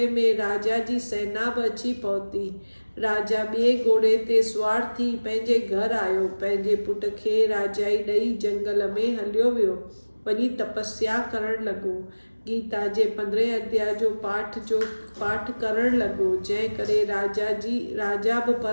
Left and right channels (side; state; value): both; inverted; correlation -1.00